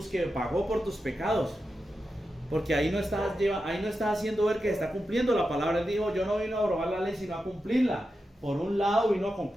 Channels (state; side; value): normal; both; correlation 0.90